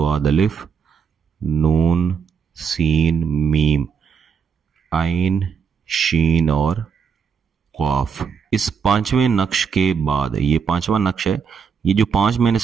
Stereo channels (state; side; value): quieter; left; 6.5 dB